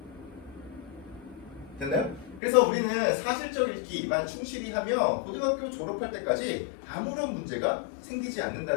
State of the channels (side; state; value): right; drops out; at 2.4 s